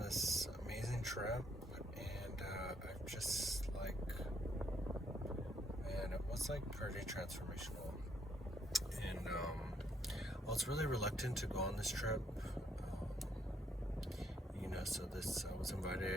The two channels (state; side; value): normal; both; correlation 0.72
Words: amazing trip, and I've just man, it was pretty transformational. And I was really reluctant to go on this trip. I was